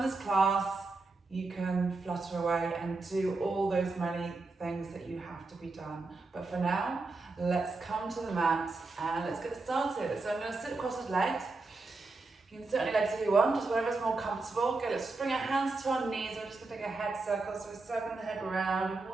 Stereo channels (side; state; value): left; quieter; 3.6 dB